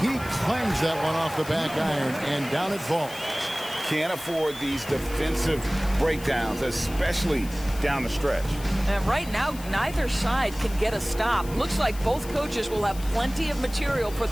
He clangs that one off the back iron, and down it falls. Can't afford these defensive breakdowns, especially down the stretch. And right now, neither side can get a stop. Looks like both coaches will have plenty of material for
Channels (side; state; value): left; noise; hiss, 16 dB below the sound